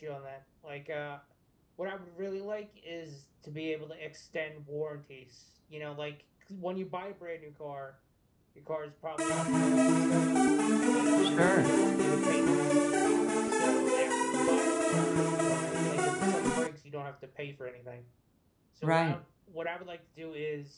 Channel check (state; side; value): identical; both; correlation 1.00